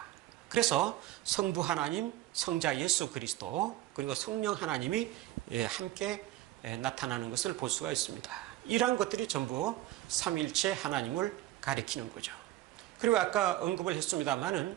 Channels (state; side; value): quieter; left; 15.1 dB